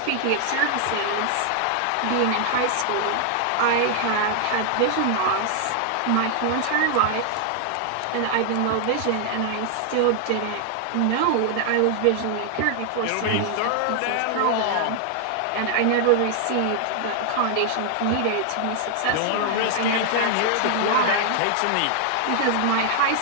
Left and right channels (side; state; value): both; different; correlation 0.00